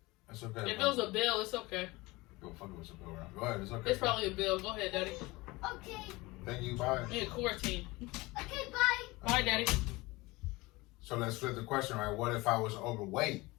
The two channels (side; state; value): right; quieter; 22.1 dB